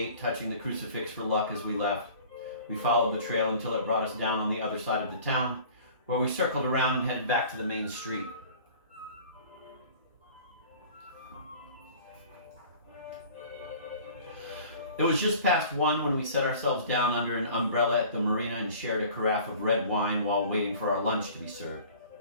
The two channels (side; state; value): both; inverted; correlation -0.46